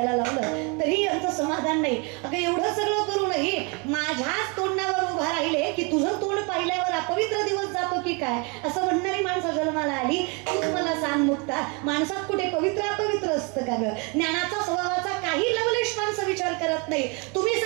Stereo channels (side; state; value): left; quieter; 32.0 dB